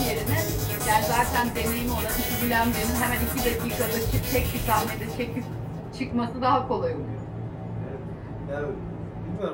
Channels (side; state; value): both; identical; correlation 1.00